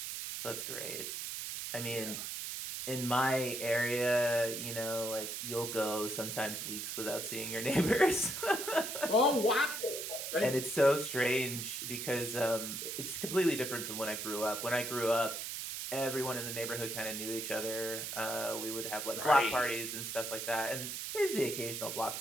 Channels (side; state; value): right; noise; hiss, 5 dB below the sound